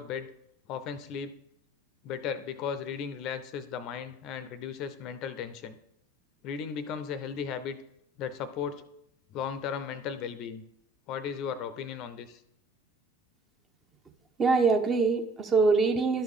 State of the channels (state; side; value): normal; both; correlation 0.55